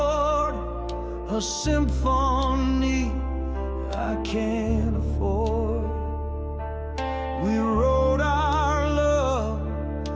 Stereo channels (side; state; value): both; identical; correlation 1.00